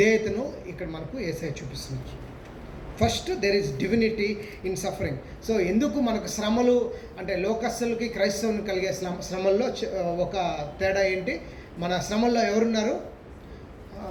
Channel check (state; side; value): identical; both; correlation 1.00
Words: ఇక్కడ మనకు యేసయ్య చూపిస్తున్నారు. First, there is divinity in suffering. So ఎందుకు మనకు శ్రమలు అంటే లోకస్తులకి క్రైస్తవుని కలిగే శ్రమల్లో ఒక తేడా ఏంటి? మన శ్రమల్లో ఎవరున్నారు?